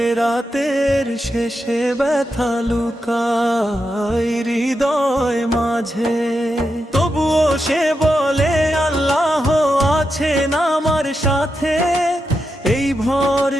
রাতের শেষে ব্যথা লুকায় হৃদয় মাঝে। তবুও সে বলে আল্লাহ আছেন আমার সাথে, এই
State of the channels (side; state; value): both; normal; correlation 0.87